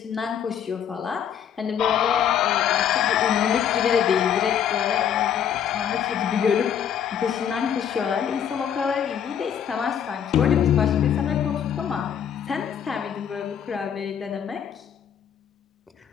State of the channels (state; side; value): quieter; right; 8.7 dB